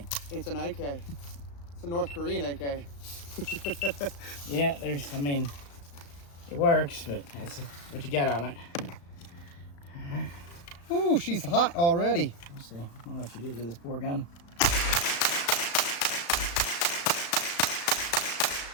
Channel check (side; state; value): right; late; 35 ms